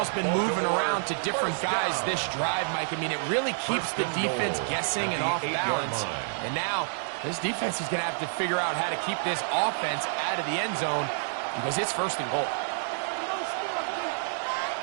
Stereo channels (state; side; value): silent; left; digital silence